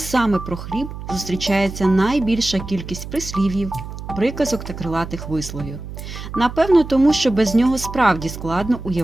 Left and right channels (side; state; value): right; noise; hum, 10 dB below the sound